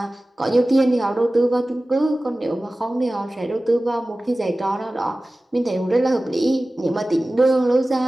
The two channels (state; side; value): normal; both; correlation 0.97